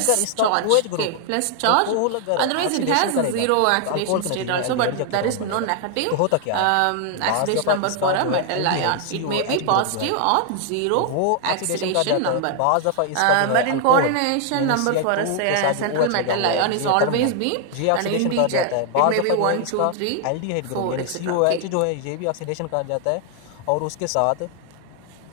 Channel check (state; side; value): different; both; correlation 0.00